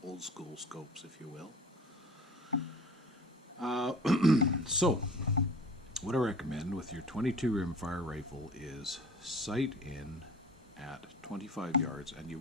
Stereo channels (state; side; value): normal; both; correlation 0.43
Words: old school scopes, if you will. So, what I recommend with your 22 rimfire rifle is sight in at 25 yards, and you